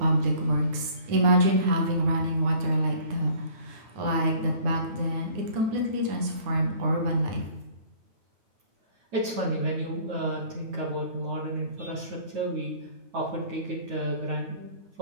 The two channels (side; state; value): left; late; 9.6 ms